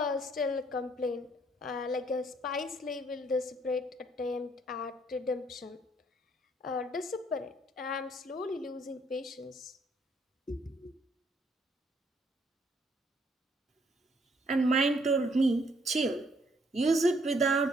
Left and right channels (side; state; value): both; normal; correlation 0.67